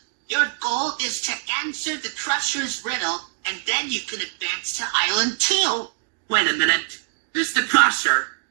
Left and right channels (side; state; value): left; silent; digital silence